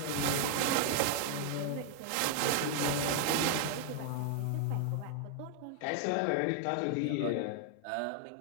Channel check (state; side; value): different; both; correlation 0.00